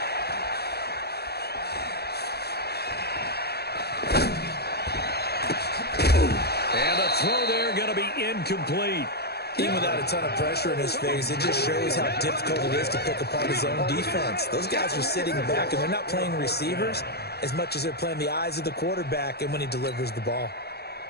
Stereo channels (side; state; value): right; late; 0.47 ms